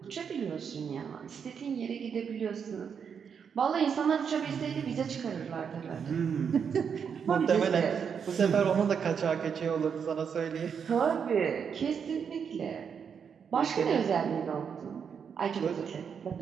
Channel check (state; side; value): quieter; left; 6.9 dB